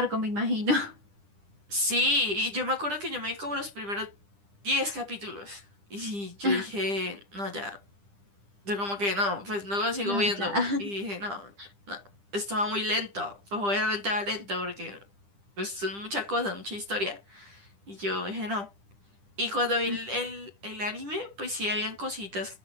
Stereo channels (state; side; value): late; left; 10 ms